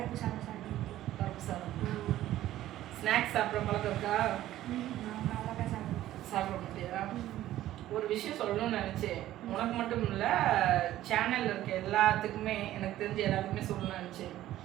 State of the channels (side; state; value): left; quieter; 13.9 dB